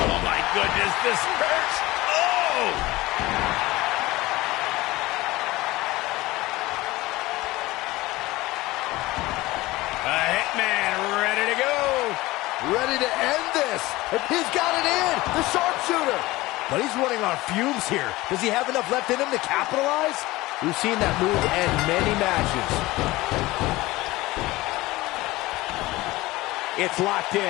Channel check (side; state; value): right; quieter; 19.3 dB